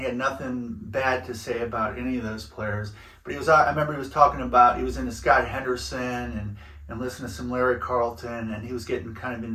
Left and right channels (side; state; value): both; identical; correlation 1.00